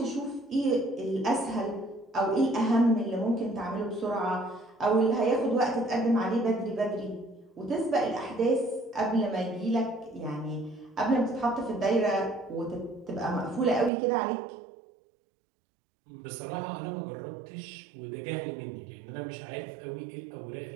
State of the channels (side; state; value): left; drops out; at 13.9 s